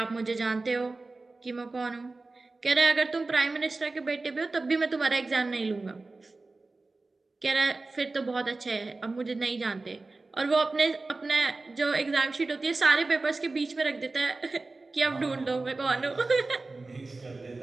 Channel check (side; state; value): left; quieter; 3.4 dB